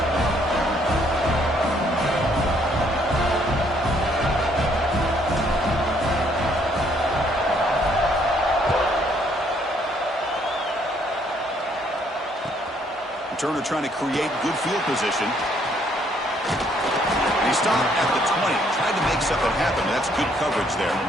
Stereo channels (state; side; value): normal; both; correlation 0.67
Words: Turner trying to create good field position. He stopped at the 20. Tried to make something happen. That's good coverage there.